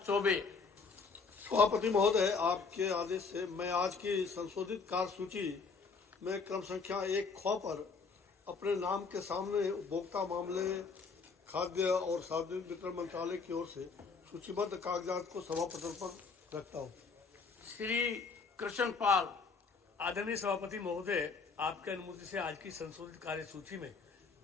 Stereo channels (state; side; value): quieter; right; 4.8 dB